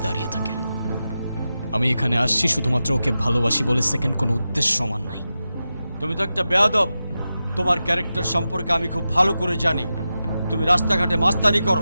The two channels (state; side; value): inverted; both; correlation -0.92